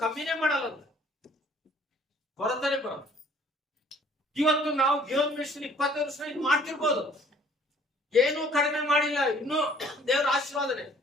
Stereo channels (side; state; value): both; normal; correlation 0.57